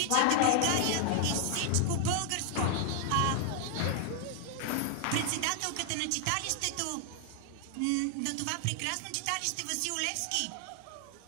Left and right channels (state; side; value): different; both; correlation 0.00